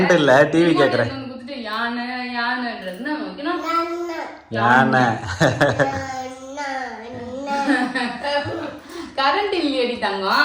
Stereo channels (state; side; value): identical; both; correlation 1.00